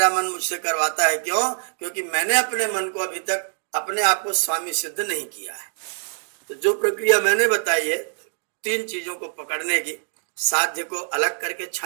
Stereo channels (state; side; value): silent; left; digital silence